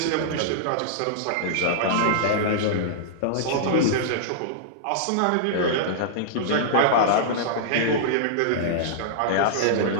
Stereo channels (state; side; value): different; both; correlation -0.02